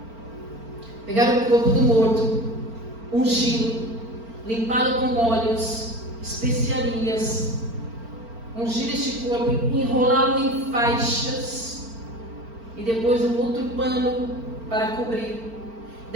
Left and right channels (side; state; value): left; late; 4.4 ms